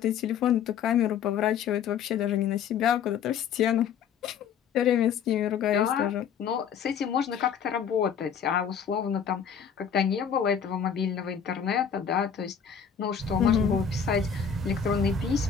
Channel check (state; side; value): quieter; right; 7.4 dB